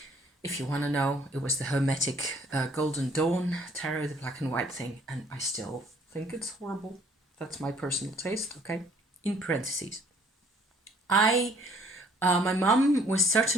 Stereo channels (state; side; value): normal; both; correlation 0.60